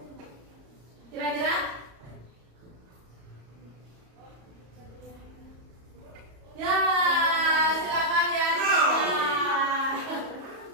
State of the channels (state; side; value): late; left; 34 ms